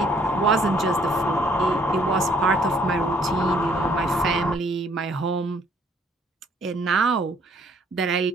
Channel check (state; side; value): normal; both; correlation 0.63